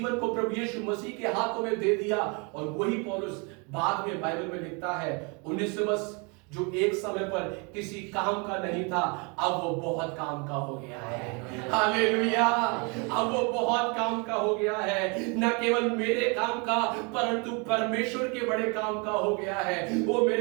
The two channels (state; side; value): quieter; left; 32.1 dB